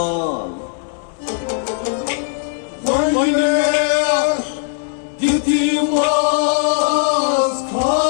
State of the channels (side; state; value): right; silent; 67 dB below the other